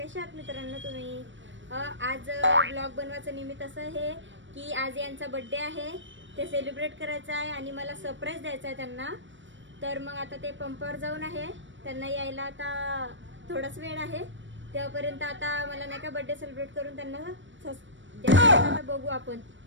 आहात मित्रांनो तुम्ही? आज ब्लॉग बनवायचं निमित्त असं आहे की आज यांचा बर्थडे आहे, ते सेलिब्रेट करायचं आहे आणि मला सरप्राईज द्यायचं आहे त्यांना. तर मग आता ते पंपावर जाऊन आहे, त्यांना यायला आता थोडाच वेळ आहे. तेव्हापर्यंत आता मला नाही का बर्थडे सेलिब्रेट करून त्यांना आता बघू आपण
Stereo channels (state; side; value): late; left; 0.55 ms